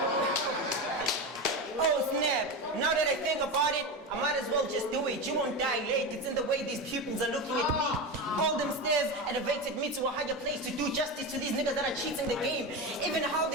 Oh snap. Now that I think about it, I might as well just do it. You won't die late. It's in the way these pupils are looking at me. All them stairs elevated me to a higher place to do justice to these niggas that are cheating the game. Even how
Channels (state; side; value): normal; both; correlation 0.20